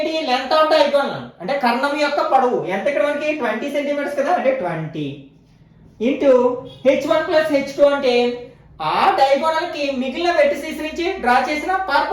లెంత్ ఆఫ్ డయాగోనల్, అంటే కర్ణం యొక్క పొడవు ఎంత? ఇక్కడ మనకి 20 సెంటీమీటర్స్ కదా, అంటే 20 ఇంటూ h1 ప్లస్ h2 అంటే ఆ డయాగోనల్ కి మిగిలిన వెర్టిసెస్ నుంచి డ్రా చేసిన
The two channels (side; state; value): both; identical; correlation 1.00